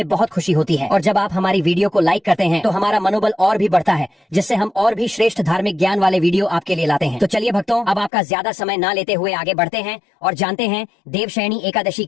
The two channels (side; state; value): right; drops out; at 8.1 s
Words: बहुत खुशी होती है, और जब आप हमारी वीडियो को लाइक करते हैं तो हमारा मनोबल और भी बढ़ता है, जिससे हम और भी श्रेष्ठ धार्मिक ज्ञान वाले वीडियो आपके लिए लाते हैं। तो चलिए भक्तों, अब आपका ज्यादा समय ना लेते हुए आगे बढ़ते हैं और जानते हैं देवशयनी एकादशी